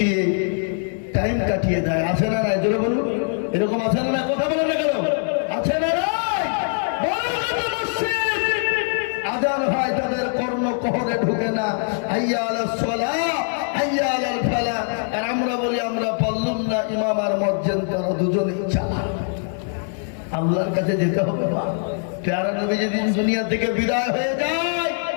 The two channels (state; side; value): silent; right; 56 dB below the other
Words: টাইম কাটিয়ে দেয়। আছে না নাই? জোরে বলুন। এরকম আছে না? কথা বলে না কেন? আছে না? আজান হয়, তাদের কর্ণকহরে ঢুকে না। হাইয়া আলাস সালাহ, হাইয়া আলাল ফালাহ। আর আমরা বলি আমরা পারলাম না, ইমাম আর মুয়াজ্জিন তারা দুজনেই চালা। আল্লাহর কাছে যেতে হবে। প্যারা নবী যেদিন দুনিয়া থেকে বিদায় হয়ে যায়,